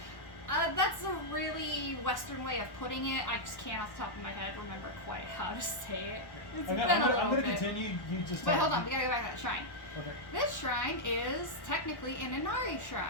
That's a really Western way of putting it. I just can't off the top of my head remember quite how to say it. It's been a little I'm gonna bit. continue. You just. But hold on, we gotta go back to that shrine. Okay. This shrine is technically an Inari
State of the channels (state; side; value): late; right; 1.1 ms